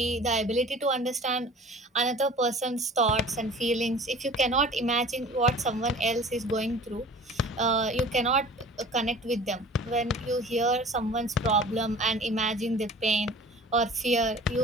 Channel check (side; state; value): both; normal; correlation 0.44